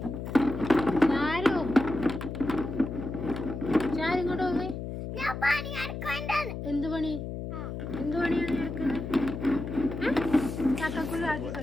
ചാരു, ചാരു ഇങ്ങോട്ട് പോകേ. ഞാൻ പണി എടുക്കണ്ടാണ്. എന്ത് പണി? എന്ത് പണിയാണ് നീ എടുക്കുന്നത്? ചക്കക്കുള്ളി ആക്കി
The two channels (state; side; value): noise; left; hum, 6 dB below the sound